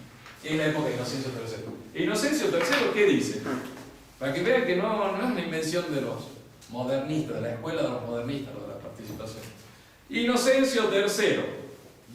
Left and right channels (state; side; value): identical; both; correlation 1.00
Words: es la época de Inocencio III. ¿Inocencio III qué dice? Para que vean que no es una invención de los modernistas, de la escuela de los modernistas, lo de la participación. Inocencio III